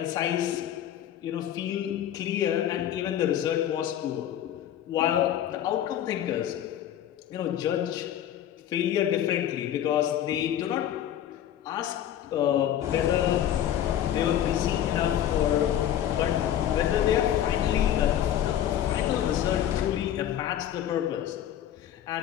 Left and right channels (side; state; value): right; quieter; 11.0 dB